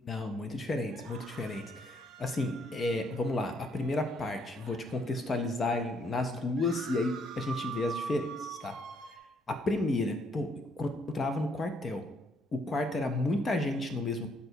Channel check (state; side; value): normal; both; correlation 0.69